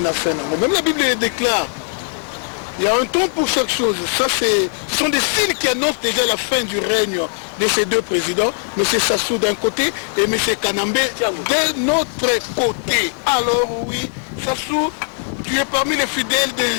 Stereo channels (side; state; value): right; silent; 56 dB below the other